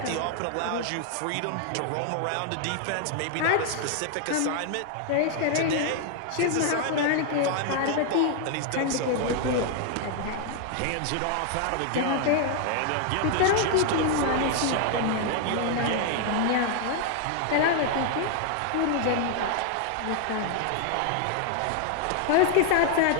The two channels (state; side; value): different; both; correlation 0.00